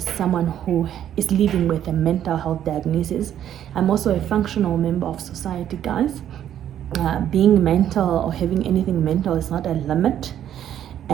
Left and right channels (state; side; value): quieter; left; 10.6 dB